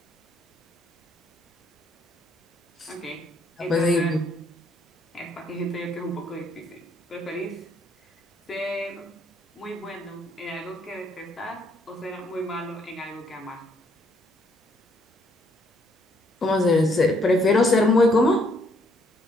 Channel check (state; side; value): normal; both; correlation 0.69